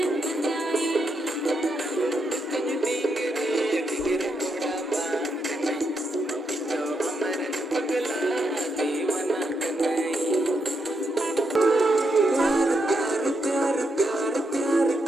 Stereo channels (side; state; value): both; normal; correlation 0.81